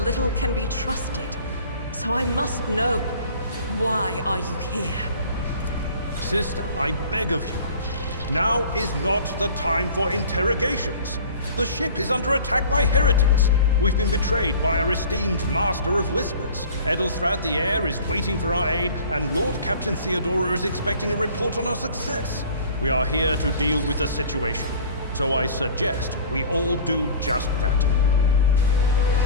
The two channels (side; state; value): both; inverted; correlation -0.44